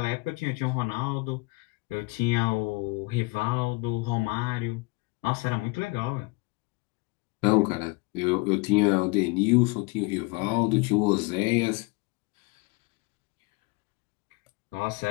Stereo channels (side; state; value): right; quieter; 25.7 dB